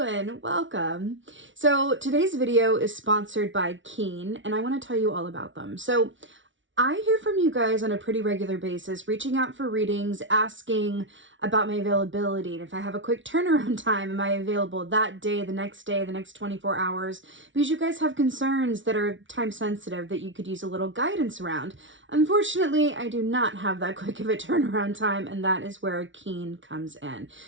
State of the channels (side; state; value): left; late; 0.56 ms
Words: Welcome. So today's video is sponsored by Keen, and I want to tell you all about them. So I hear from you guys on a pretty regular basis, reaching out for readings, asking about my availability. And if I have a quick turnaround time, am I available that day, the next 24 hours? Because you guys have concerns that are time sensitive that you could use a little guidance around. Unfortunately, I do not have that quick of a turnaround time, and that is where Keen comes in.